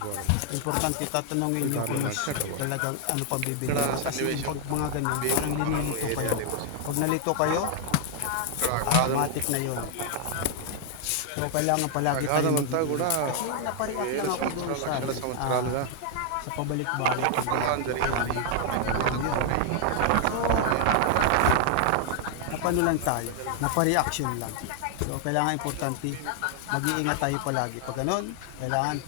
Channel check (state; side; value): different; both; correlation 0.00